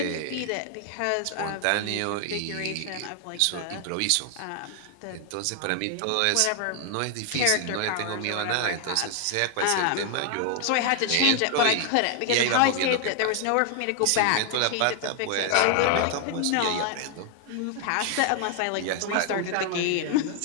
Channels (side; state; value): both; different; correlation 0.00